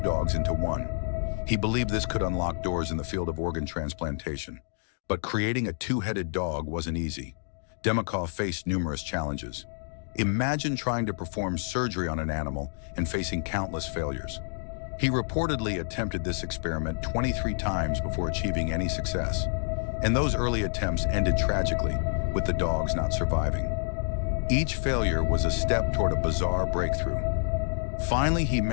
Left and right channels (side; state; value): right; silent; digital silence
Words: into one? He believed this could unlock doors in the field of organ transplantation, but creating a two-headed dog wasn't easy. Demov faced numerous challenges. Imagine trying to perform surgery on an animal and facing countless failures. He reportedly attempted this experiment 23 times before achieving any success. And those early attempts ended tragically, with the dogs not surviving. Each failure was a step toward a bizarre breakthrough. Finally, he